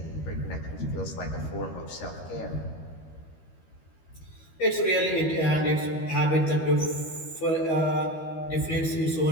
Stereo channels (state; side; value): late; right; 13 ms